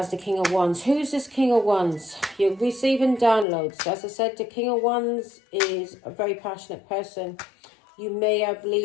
the King of Wands. Who's this King of Wands? You're receiving downloads. As I said, the King of Wands is a very passionate person. You may have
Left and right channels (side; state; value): right; drops out; at 3.5 s